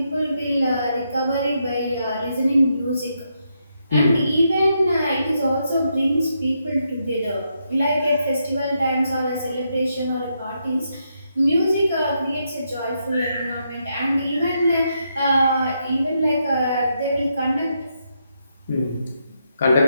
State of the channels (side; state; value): both; inverted; correlation -0.80